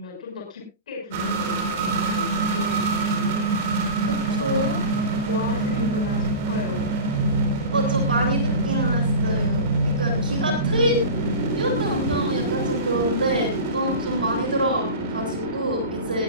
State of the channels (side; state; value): both; inverted; correlation -0.31